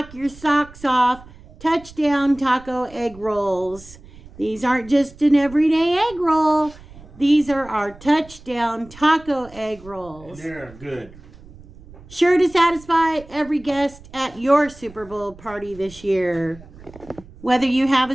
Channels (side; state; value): right; noise; rumble, 21 dB below the sound